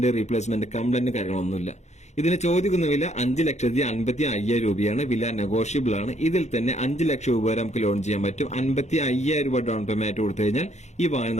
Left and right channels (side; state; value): right; late; 0.33 ms